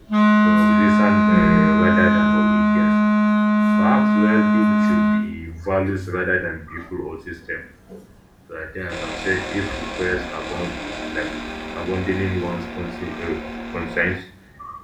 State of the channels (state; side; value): identical; both; correlation 1.00